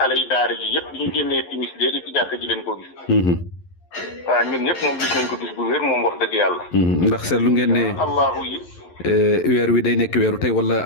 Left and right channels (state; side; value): late; right; 11 ms